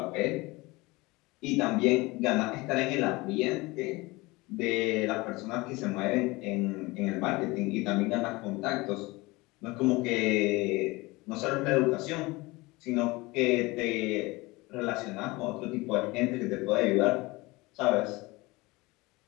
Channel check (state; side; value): quieter; right; 22.7 dB